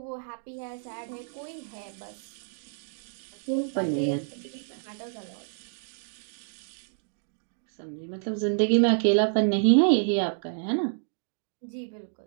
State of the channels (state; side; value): silent; left; digital silence